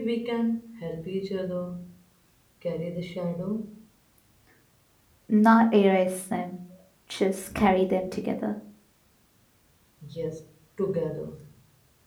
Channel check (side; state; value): both; identical; correlation 1.00